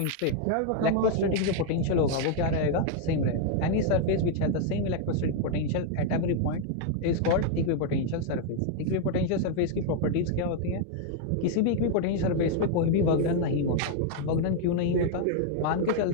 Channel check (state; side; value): different; both; correlation 0.00